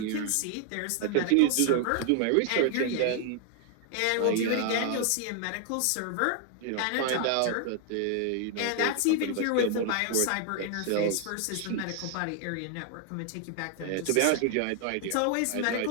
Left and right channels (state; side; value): different; both; correlation 0.00